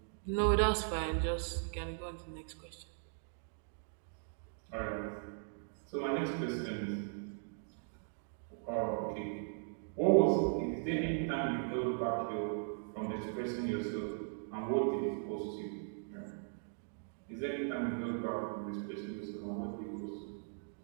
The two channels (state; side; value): silent; left; digital silence